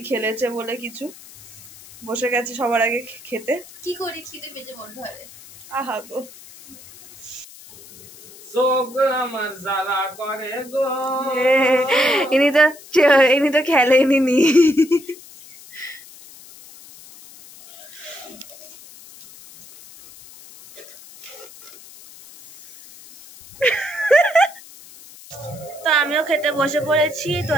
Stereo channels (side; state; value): left; noise; hiss, 20 dB below the sound